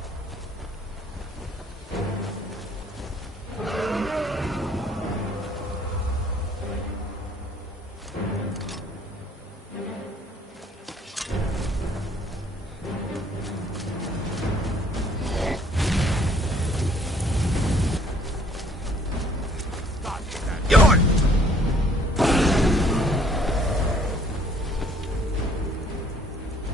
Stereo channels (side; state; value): both; normal; correlation 0.60